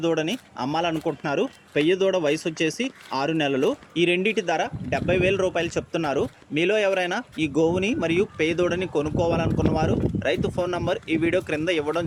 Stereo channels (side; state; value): both; identical; correlation 1.00